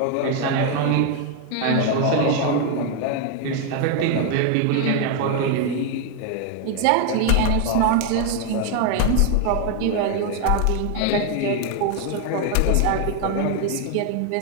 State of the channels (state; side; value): different; both; correlation 0.01